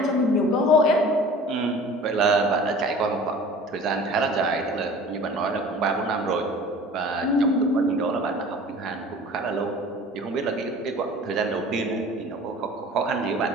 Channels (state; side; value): normal; both; correlation 0.43